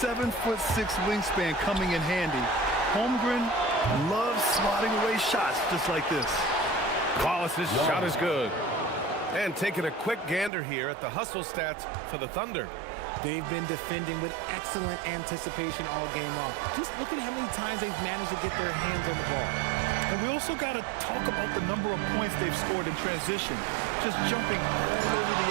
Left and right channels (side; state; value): left; drops out; at 10.5 s